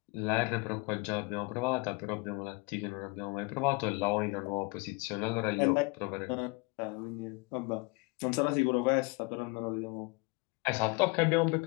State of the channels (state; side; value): quieter; right; 27.0 dB